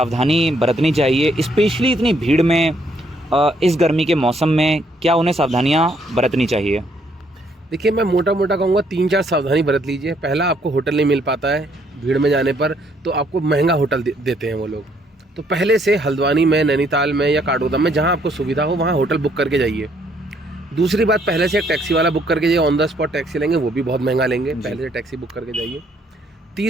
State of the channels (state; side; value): normal; both; correlation 0.69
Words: बरतनी चाहिए, स्पेशली इतनी भीड़ में, इस गर्मी के मौसम में क्या उन्हें सावधानियाँ बरतनी चाहिए? देखिए, मैं मोटा मोटा कहूँगा 3-4 सावधानी बरत लीजिए। पहला, आपको होटल नहीं मिल पाता है भीड़ में जाने पर, तो आपको महंगा होटल देते हैं वो लोग। तो पहले से हल्द्वानी में, नैनीताल में या काठगोदाम में जहाँ आपको सुविधा हो वहाँ होटल बुक करके जाइए। दूसरी बात, पहले से एक टैक्सी वाला बुक करके जाइए। ऑन द स्पॉट टैक्सी लेंगे, वो भी बहुत महंगा लेंगे, पहले से टैक्सी बुक करके जाइए।